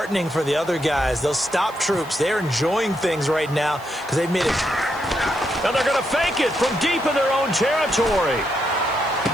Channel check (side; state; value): right; noise; hiss, 24 dB below the sound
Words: for the other guys. Those stop troops, they're enjoying things right now because they've made it. And they're going to fake it from deep in their own territory.